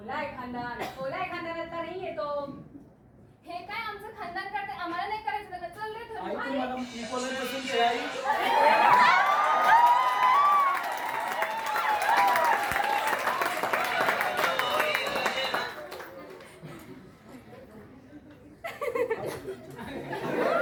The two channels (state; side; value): identical; both; correlation 1.00